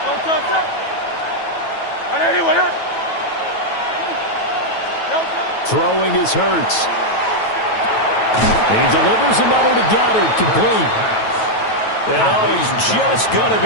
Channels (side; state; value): right; late; 9.2 ms